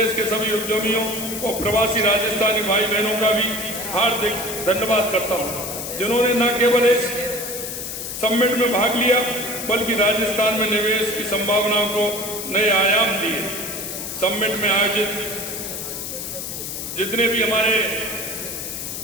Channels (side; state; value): left; noise; hiss, 6 dB below the sound